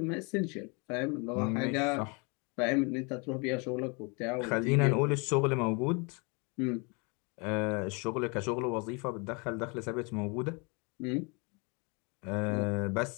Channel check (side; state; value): right; quieter; 31.8 dB